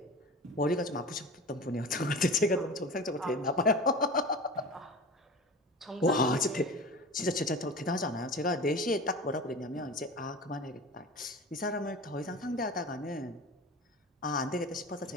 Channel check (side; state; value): both; normal; correlation 0.33